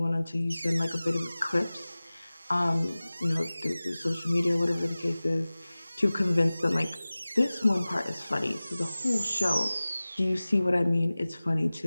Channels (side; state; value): both; inverted; correlation -0.98